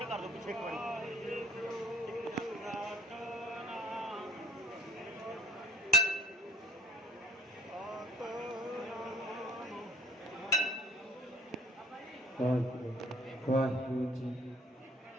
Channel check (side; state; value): both; normal; correlation 0.57